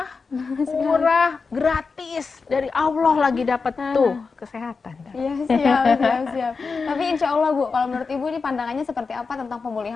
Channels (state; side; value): quieter; right; 4.7 dB